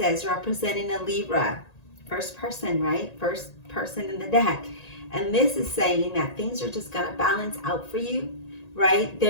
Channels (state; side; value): late; right; 1.9 ms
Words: representing a Libra. First person, right? First person in the deck. And this is saying that things are just going to balance out for you, right?